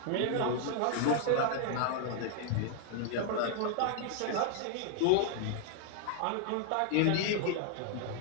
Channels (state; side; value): different; both; correlation 0.00